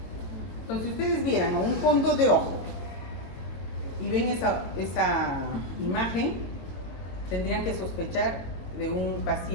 Entonces, si ustedes vieran un fondo de ojo y ven esa imagen, tendrían que sospechar de un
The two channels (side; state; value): right; late; 22 ms